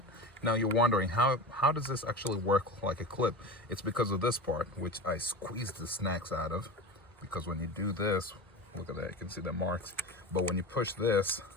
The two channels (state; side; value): normal; both; correlation 0.29